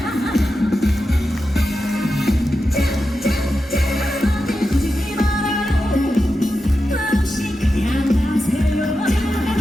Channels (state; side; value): normal; both; correlation 0.90